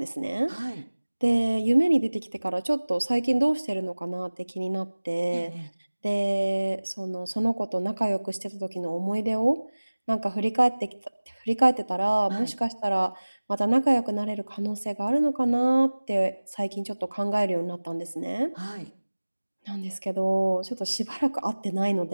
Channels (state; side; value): inverted; both; correlation -1.00